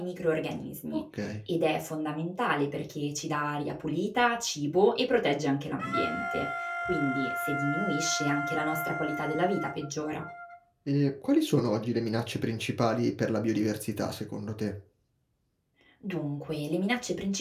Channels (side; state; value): both; identical; correlation 1.00